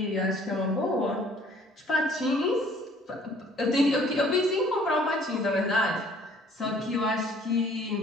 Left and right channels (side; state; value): both; normal; correlation 0.57